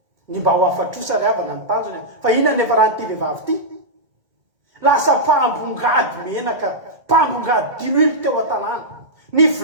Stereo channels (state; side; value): late; left; 1.7 ms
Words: Ny mba ho afatrosa ry havana ny tanjony. Fa inona nefa rahan'ity vehivavy ity? Lasa mpambongady menaka, mpambongady diloilo teo an-tanàna. Ny